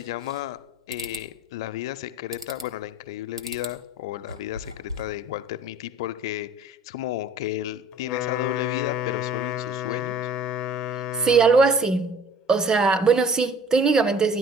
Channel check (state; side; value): normal; both; correlation 0.48